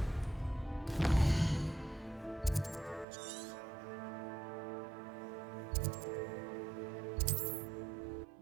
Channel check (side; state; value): left; drops out; at 3.1 s